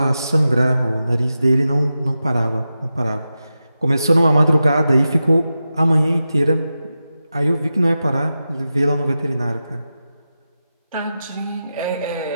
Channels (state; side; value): inverted; both; correlation -0.92